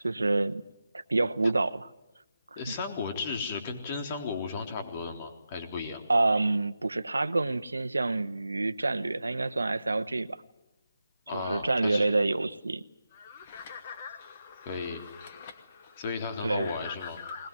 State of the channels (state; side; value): inverted; both; correlation -0.90